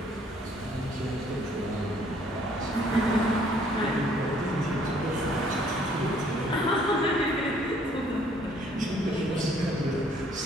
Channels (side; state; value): both; normal; correlation 0.62